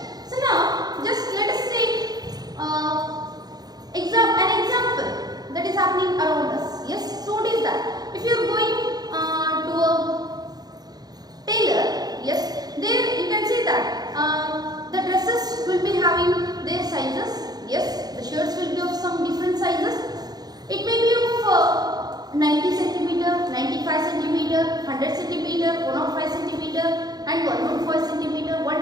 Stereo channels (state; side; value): late; left; 0.19 ms